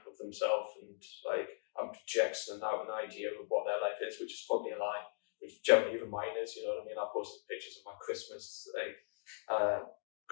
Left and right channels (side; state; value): right; silent; digital silence